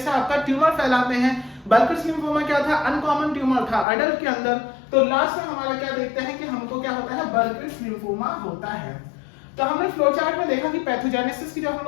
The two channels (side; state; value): right; drops out; at 3.9 s